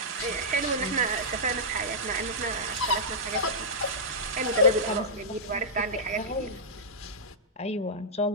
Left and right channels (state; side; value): normal; both; correlation -0.12